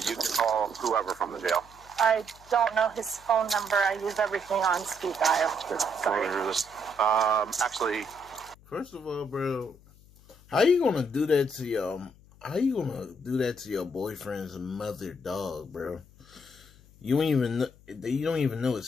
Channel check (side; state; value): left; noise; hum, 25 dB below the sound